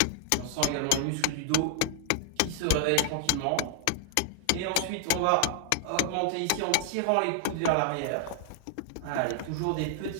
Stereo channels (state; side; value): different; both; correlation 0.00